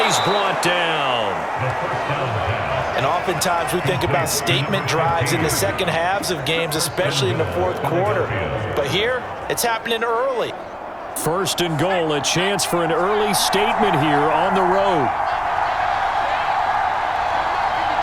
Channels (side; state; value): both; identical; correlation 1.00